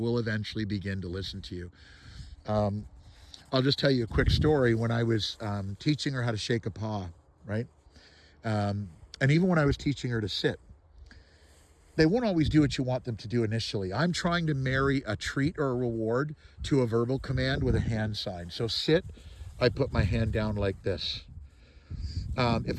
eventually begin to listen to you. I'll just tell you a quick story. When I was teaching her how to shake a paw, right? And even when I was teaching her to sit, they won't always do what you want them to do initially. I'm trying to marry a treat or a reward to a verbal command with a hand sign. So sit, I put my hand down like this.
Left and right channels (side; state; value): both; identical; correlation 1.00